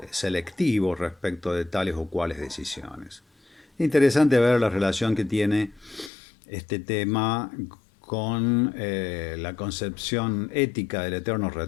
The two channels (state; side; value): drops out; right; at 6.1 s